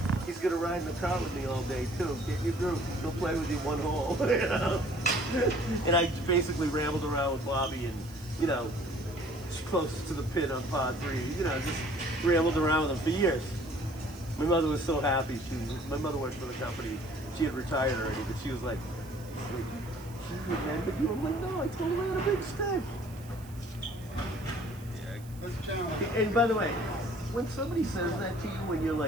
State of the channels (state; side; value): noise; right; hiss, 22 dB below the sound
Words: he's gonna ride in the car with me all day too. Get your group, he'll play with you one hole, you know? And I basically rambled around with Bobby and, you know, closest to the pit on pod 3, you know, just rambled around with him for years. My mother was so happy. My mother worked for the company. She had retired already, but she was like, she remembered you? I'm like, no, I told her I had a big stick. And by the way, when somebody says that to you when you're